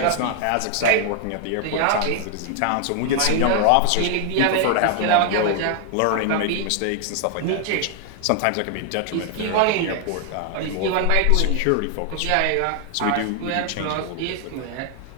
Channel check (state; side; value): different; both; correlation 0.00